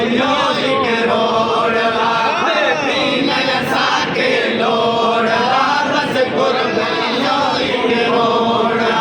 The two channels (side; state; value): both; identical; correlation 1.00